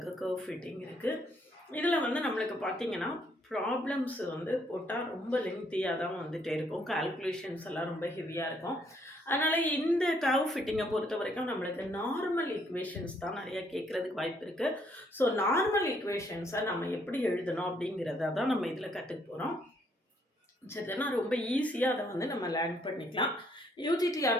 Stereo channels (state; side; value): normal; both; correlation 0.69